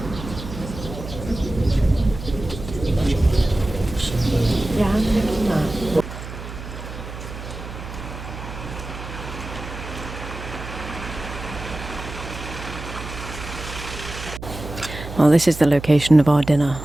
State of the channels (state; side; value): noise; right; hum, 10 dB below the sound